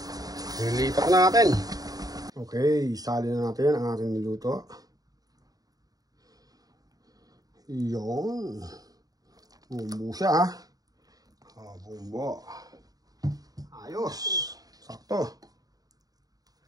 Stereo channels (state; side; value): late; left; 0.18 ms